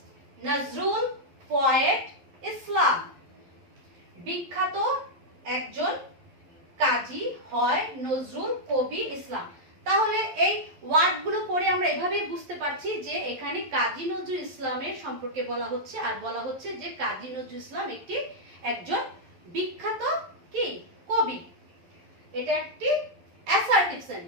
Nazrul, poet, Islam. বিখ্যাত একজন, কাজী হয়, নজরুল কবি, ইসলাম। তাহলে এই ওয়ার্ডগুলো পড়ে আমরা এভাবেই বুঝতে পারছি যে এখানে কাজী নজরুল ইসলামের সম্পর্কে বলা হচ্ছে, আর বলা হচ্ছে যে কাজী নজরুল ইসলাম একজন বিখ্যাত কি কবি। এটা একটি assertive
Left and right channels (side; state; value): left; late; 11 ms